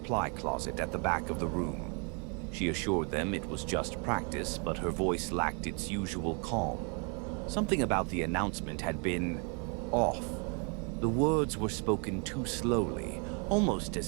closet at the back of the room. She assured them it was just practice, but her voice lacked its usual calm. Something about the announcement had been off. The words were spoken too slowly, almost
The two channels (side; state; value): left; quieter; 36.8 dB